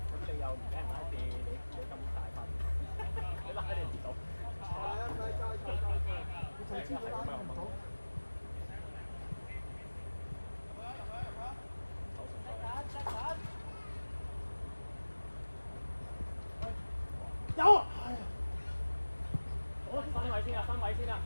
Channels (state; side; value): inverted; both; correlation -1.00